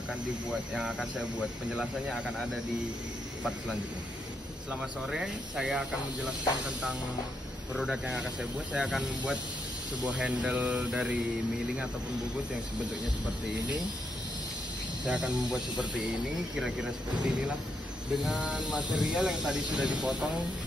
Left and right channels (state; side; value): normal; both; correlation 0.80